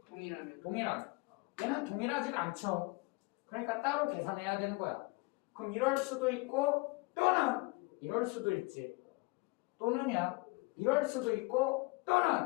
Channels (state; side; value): quieter; right; 25.7 dB